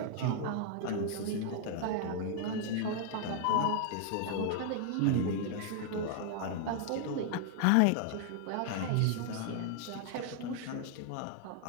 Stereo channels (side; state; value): both; different; correlation 0.00